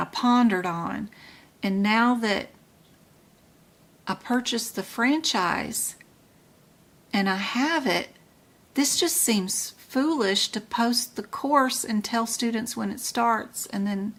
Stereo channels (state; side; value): identical; both; correlation 1.00